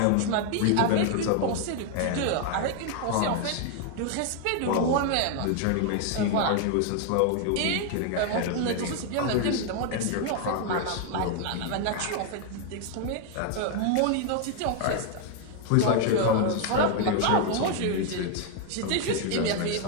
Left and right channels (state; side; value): different; both; correlation 0.00